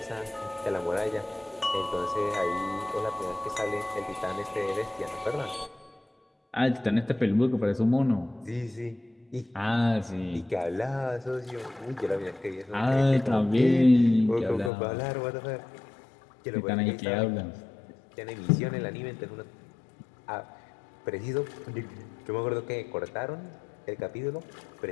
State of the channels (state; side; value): drops out; right; at 14.7 s